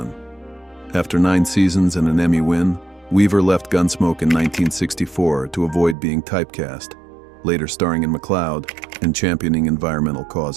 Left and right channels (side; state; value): left; drops out; at 6.0 s